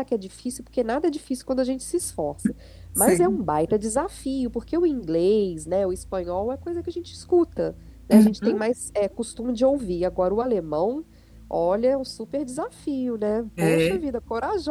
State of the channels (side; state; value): both; identical; correlation 1.00